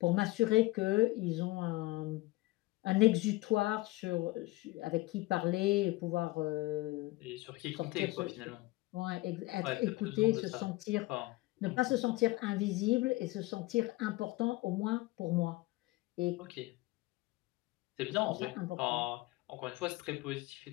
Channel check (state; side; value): quieter; right; 20.3 dB